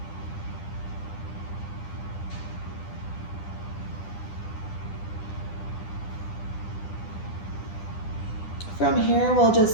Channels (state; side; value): late; right; 10 ms